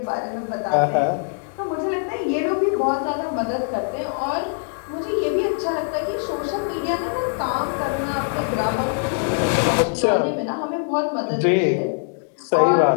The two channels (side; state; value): right; silent; digital silence